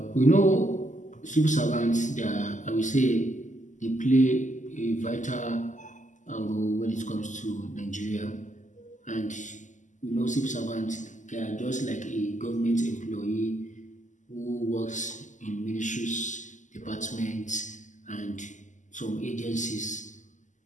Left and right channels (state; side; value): late; right; 0.36 ms